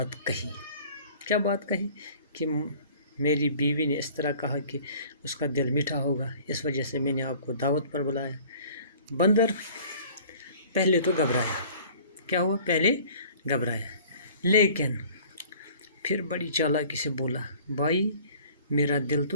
कही। क्या बात कही? कि मेरी बीवी ने इस तरह कहा कि उसका दिल मीठा होगा, इस वजह से मैंने आपको दावत पर बुलाया। बंदर पहले तो घबराया। क्या हुआ? पहले घबराया, लेकिन फिर बड़ी चालाकी से बोला, भाई, मेरा दिल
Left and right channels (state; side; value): inverted; both; correlation -0.50